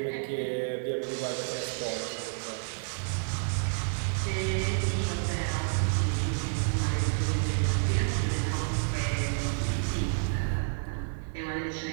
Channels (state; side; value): silent; left; digital silence